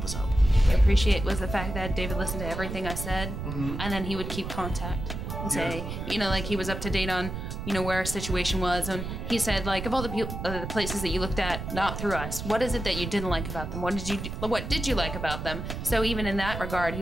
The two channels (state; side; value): noise; right; rumble, 6 dB below the sound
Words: us out. What I appreciate was the fact that David listened to everything I said, and then he would keep contact and say, you know, like he was up to date on, you know, where our situation was, and he said, like, of all the places that you looked at, not through us, what is it that you didn't like about them? What did you like about them? So even in that regard,